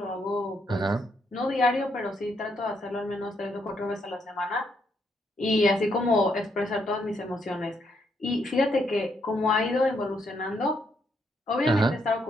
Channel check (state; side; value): normal; both; correlation 0.76